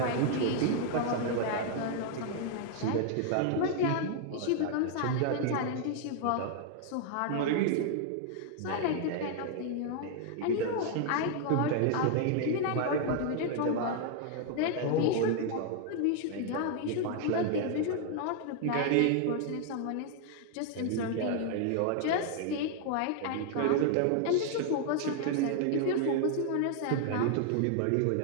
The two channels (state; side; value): different; both; correlation 0.00